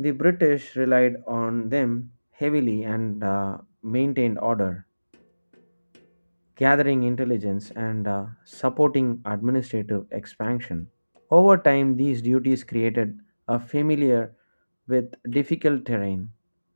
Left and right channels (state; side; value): inverted; both; correlation -1.00